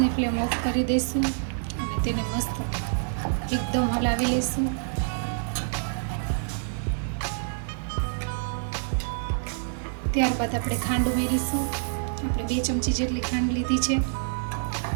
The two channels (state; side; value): silent; left; digital silence